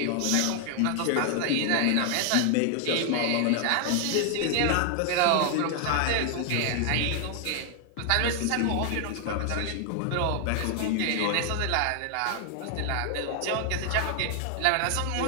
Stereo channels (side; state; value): both; different; correlation 0.00